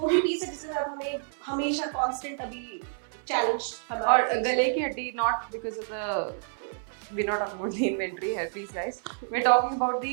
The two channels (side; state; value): left; silent; 59 dB below the other